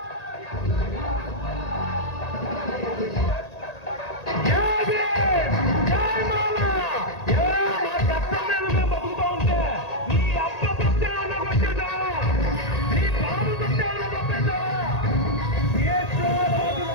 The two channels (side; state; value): right; late; 1.8 ms